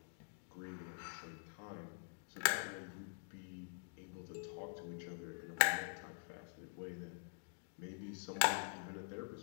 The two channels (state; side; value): silent; right; digital silence